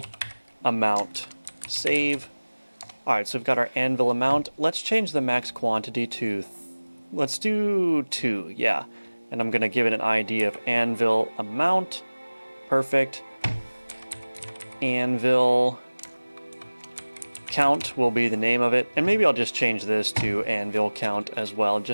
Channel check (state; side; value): inverted; both; correlation -1.00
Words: amount. Save. All right, so we've got our anvil amount. Let's change the max quantity to, let's do 2, yeah. And I'm gonna give it an ID of anvil amount. Perfect. Anvil count will be the name of it. And maybe I'll just change this to anvil count as well,